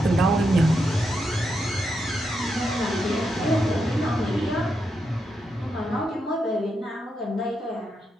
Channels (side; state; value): both; normal; correlation 0.83